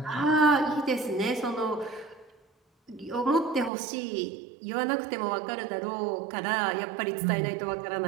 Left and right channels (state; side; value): drops out; left; at 3.7 s